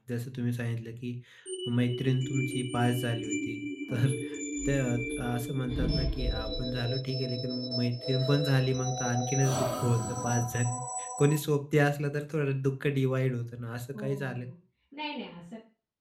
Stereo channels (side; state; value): both; identical; correlation 1.00